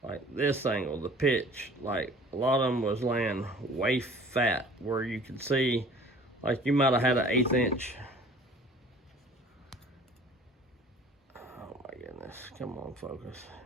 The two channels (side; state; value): both; normal; correlation 0.48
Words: like this angle, the pitch. Like a lot of them was laying way fat, where you could see like you might have had an 1/8 inch. Oh my goodness, come on, focus.